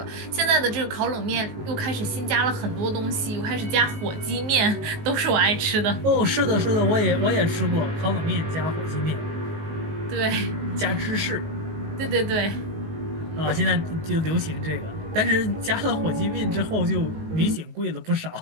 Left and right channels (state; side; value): late; left; 19 ms